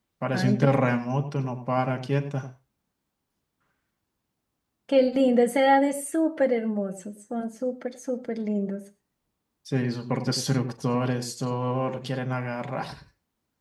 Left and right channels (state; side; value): identical; both; correlation 1.00